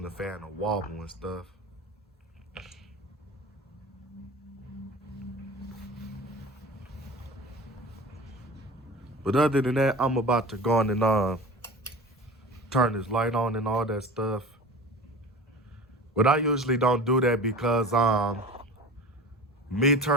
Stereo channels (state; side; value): normal; both; correlation 0.36